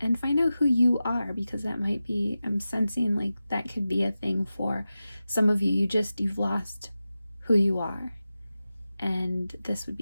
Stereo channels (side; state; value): both; inverted; correlation -0.94